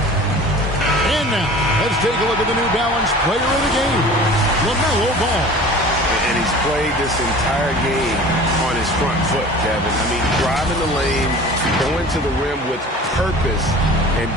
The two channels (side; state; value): both; normal; correlation 0.42